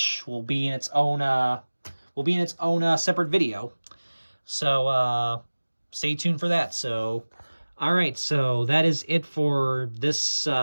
will be in its own separate video. So stay tuned for that. So all right, so that is it for this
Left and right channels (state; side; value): inverted; both; correlation -1.00